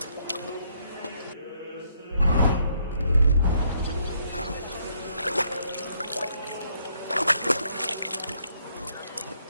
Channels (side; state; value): both; inverted; correlation -0.71